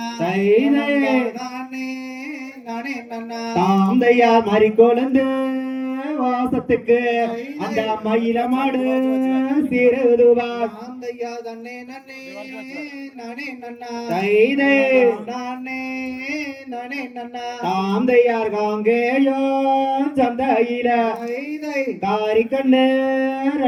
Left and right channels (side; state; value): both; identical; correlation 1.00